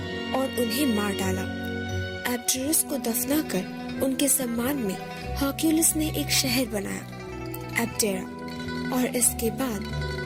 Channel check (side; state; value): both; identical; correlation 1.00